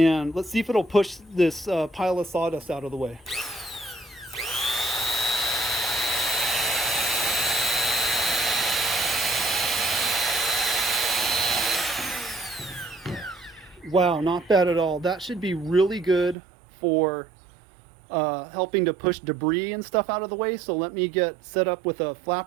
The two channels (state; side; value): drops out; left; at 16.4 s